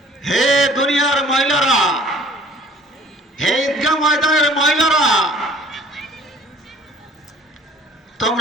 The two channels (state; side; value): normal; both; correlation 0.52